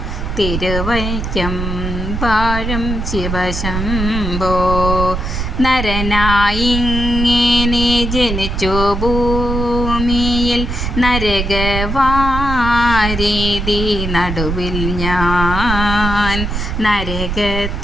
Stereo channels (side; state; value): right; noise; rumble, 3 dB below the sound